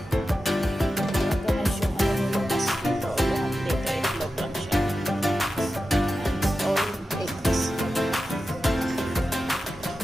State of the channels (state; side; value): normal; both; correlation 0.92